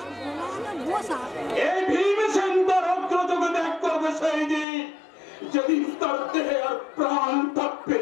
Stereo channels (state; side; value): drops out; right; at 4.7 s